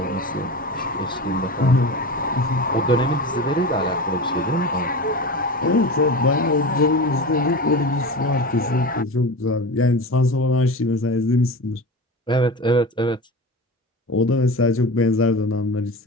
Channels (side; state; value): both; normal; correlation 0.28